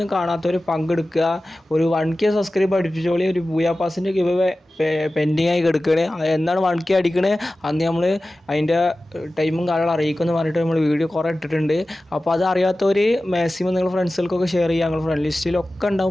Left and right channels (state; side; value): normal; both; correlation 0.96